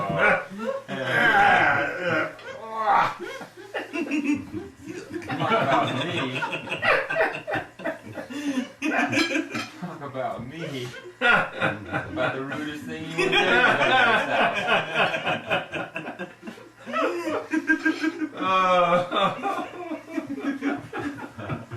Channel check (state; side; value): identical; both; correlation 1.00